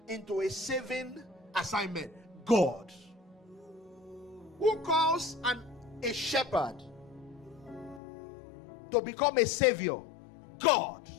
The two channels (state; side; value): drops out; right; at 8.0 s